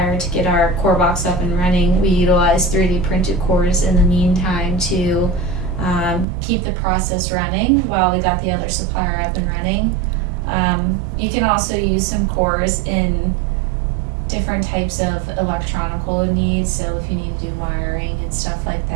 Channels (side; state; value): left; drops out; at 6.2 s